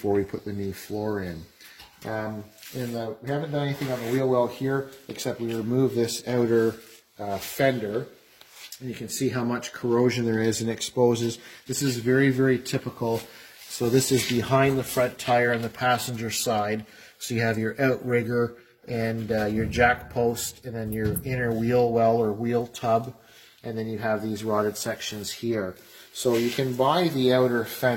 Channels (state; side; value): identical; both; correlation 1.00